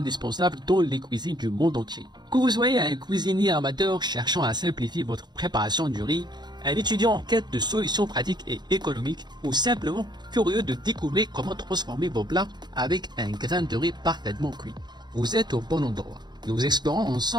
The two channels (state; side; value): late; left; 0.21 ms